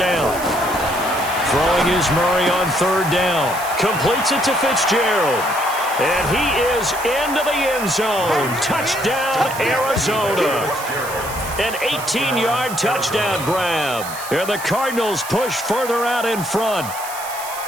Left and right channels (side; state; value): right; noise; hiss, 11 dB below the sound